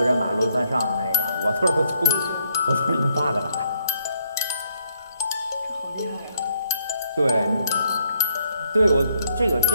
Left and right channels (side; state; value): both; inverted; correlation -0.70